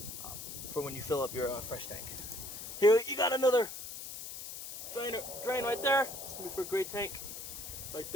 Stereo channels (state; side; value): noise; left; hiss, 9 dB below the sound